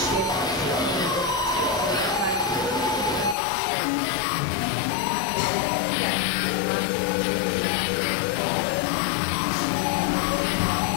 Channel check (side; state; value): right; drops out; at 3.4 s